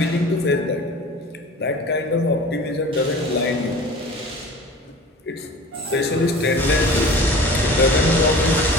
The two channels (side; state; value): both; normal; correlation 0.40